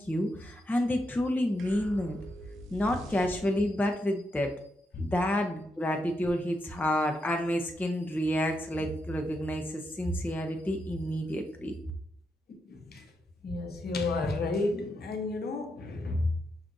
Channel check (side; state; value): both; normal; correlation 0.82